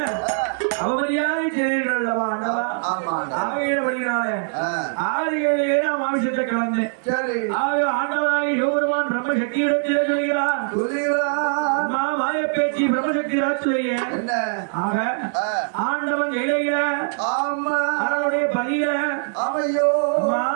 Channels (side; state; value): left; silent; digital silence